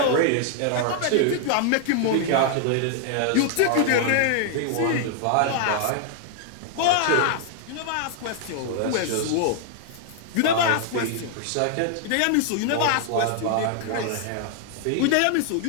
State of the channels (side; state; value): both; different; correlation -0.01